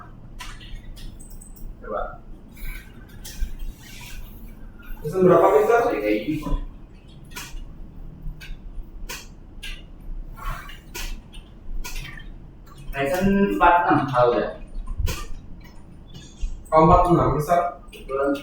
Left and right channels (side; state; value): both; identical; correlation 1.00